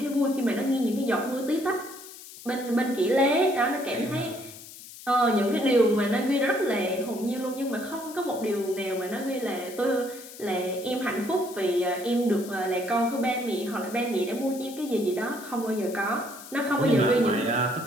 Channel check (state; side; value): noise; left; hiss, 16 dB below the sound